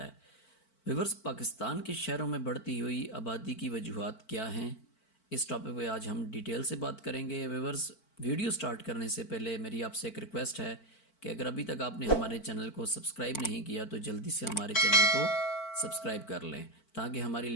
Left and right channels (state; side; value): late; right; 4.5 ms